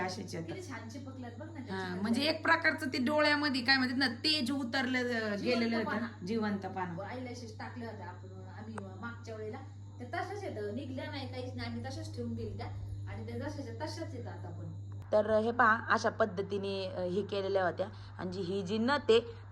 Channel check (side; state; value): both; identical; correlation 1.00